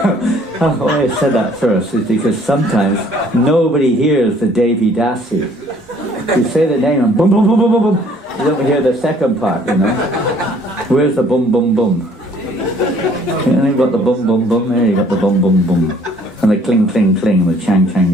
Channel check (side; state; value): both; normal; correlation 0.59